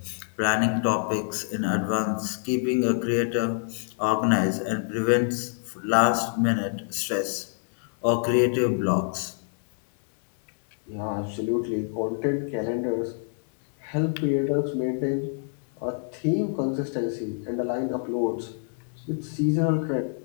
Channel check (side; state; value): right; silent; 60 dB below the other